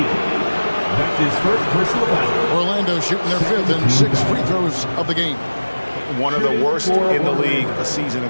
That's his first personal foul. Orlando shooting their 5th and 6th free throws of the game. One of the worst in the league a season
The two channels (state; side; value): inverted; both; correlation -1.00